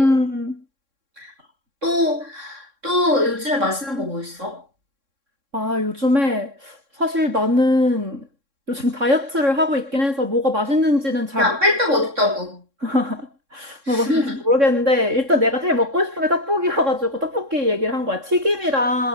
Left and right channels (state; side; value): late; left; 3.6 ms